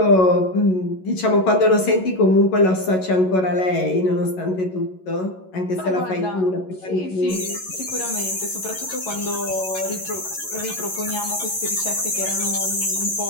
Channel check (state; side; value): late; right; 11 ms